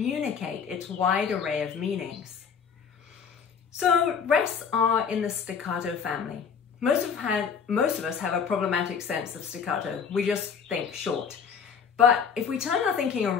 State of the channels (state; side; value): quieter; right; 6.6 dB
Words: its wide array of meanings. So rests are in the staccato family. Most of us have a problematic sense of staccato. We just think short. But if we turn our thinking